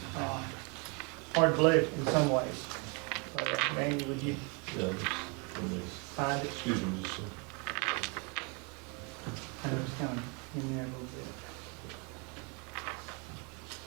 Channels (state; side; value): quieter; left; 32.9 dB